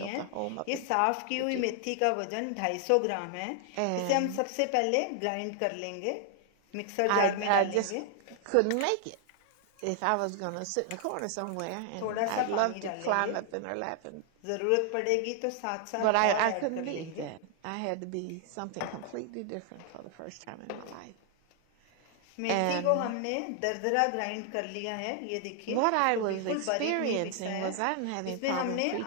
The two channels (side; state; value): both; different; correlation 0.00